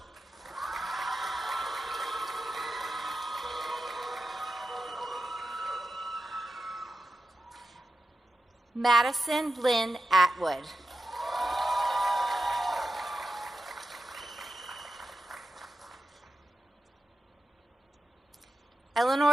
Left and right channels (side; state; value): both; normal; correlation 0.91